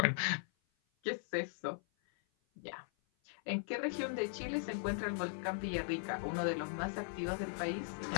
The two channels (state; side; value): silent; right; 52 dB below the other